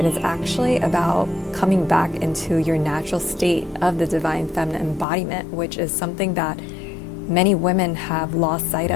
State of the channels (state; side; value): drops out; right; at 5.1 s